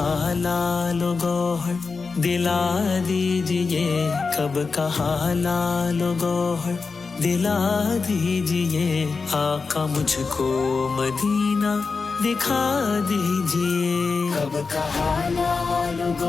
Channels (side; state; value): right; quieter; 4.6 dB